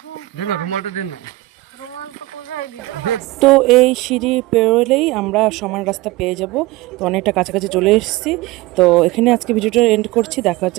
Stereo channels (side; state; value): left; quieter; 19.3 dB